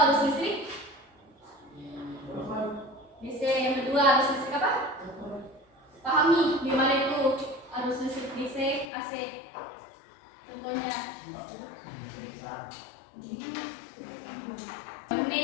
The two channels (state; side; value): drops out; right; at 8.8 s